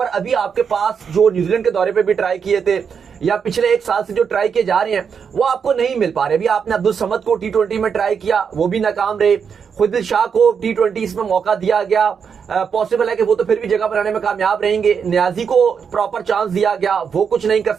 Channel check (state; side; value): quieter; left; 6.6 dB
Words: अभी आपके पास जो न्यूजीलैंड के दौरे पे भी ट्राई किए थे या पिछले 1 साल से जो ट्राई किए जा रहे हैं वो आपको नहीं मिल पा रहे। अभी आपने अब्दुल समद को T20 में ट्राई किया, वो भी नाकाम रहे। खुदिल शाह को T20 में मौका दिया गया, पॉसिबल है कि वो तो फिर भी जगह बनाने में कामयाब रहेंगे। न्याजी को प्रॉपर चांस दिया गया, वो कुछ नहीं कर